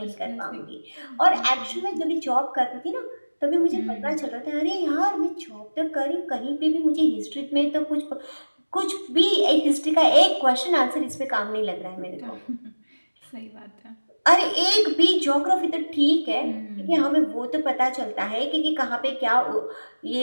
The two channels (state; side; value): inverted; both; correlation -1.00